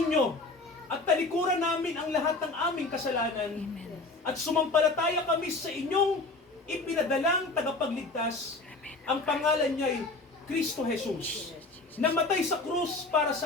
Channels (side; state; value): right; quieter; 3.3 dB